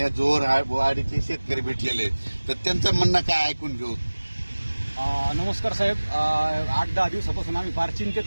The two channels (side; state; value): both; inverted; correlation -1.00